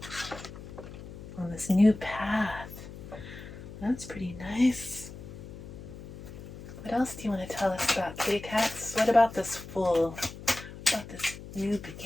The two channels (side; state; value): left; noise; hum, 13 dB below the sound